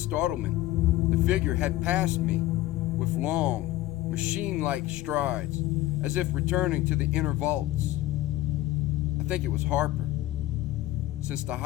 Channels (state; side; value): quieter; right; 15.6 dB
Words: the figure had passed me with long, machine-like strides, as if returning to the inner vaults. I think it was Harper, since the